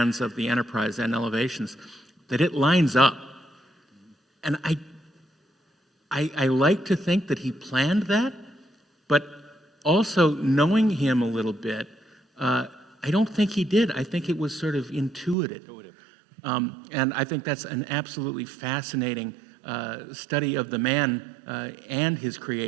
of the Enterprise and elevations, that it lines up. And I like to think that he planned that, but also knowing him a little bit, I don't think he did. I think it was sort of intuitive. And I think that's an absolutely fascinating study of the man and his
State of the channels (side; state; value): left; drops out; at 15.4 s